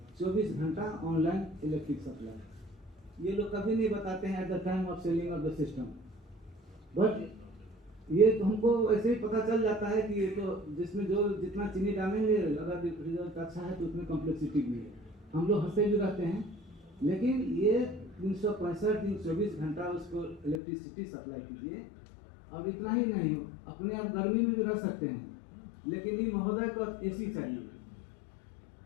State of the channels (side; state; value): right; drops out; at 20.6 s